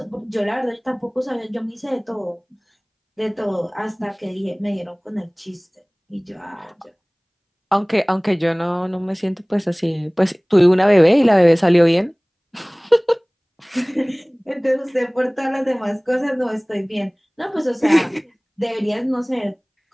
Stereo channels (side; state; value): both; identical; correlation 1.00